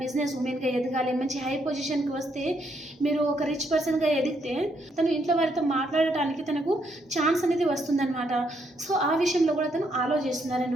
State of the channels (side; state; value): both; normal; correlation 0.74